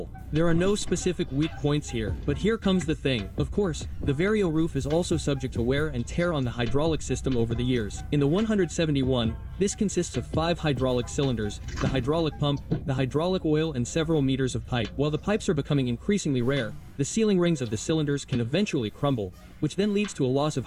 There are no specific weak points here, but here comes the thing. Of course, the Vario roof is also subject to wear and tear on the hydraulic system over the years. In the 171, this consists of 5 hydraulic cylinders, the hydraulic pump, the hydraulic oil and several meters of pipe. While the pipes are becoming increasingly rare, the sealing rings of the cylinders can eventually crumble, which then leads to a loss of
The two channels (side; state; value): both; identical; correlation 1.00